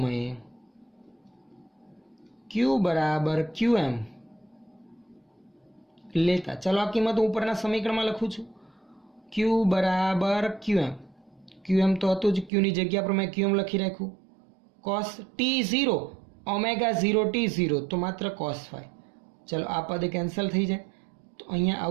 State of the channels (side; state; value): left; drops out; at 12.5 s